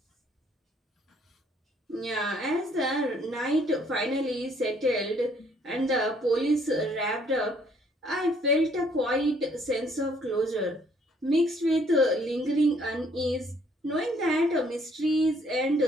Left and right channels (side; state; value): both; normal; correlation 0.64